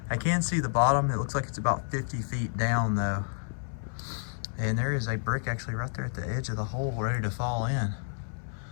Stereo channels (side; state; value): right; silent; digital silence